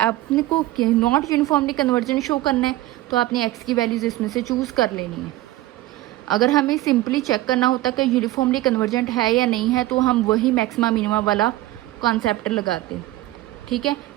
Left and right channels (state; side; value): quieter; left; 16.7 dB